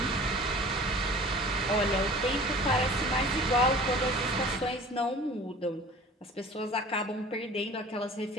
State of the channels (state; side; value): normal; both; correlation 0.44